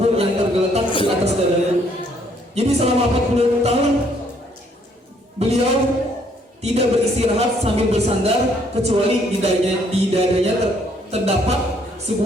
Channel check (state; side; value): normal; both; correlation 0.66